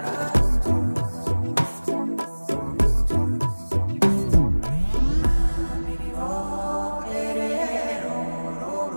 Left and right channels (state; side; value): inverted; both; correlation -1.00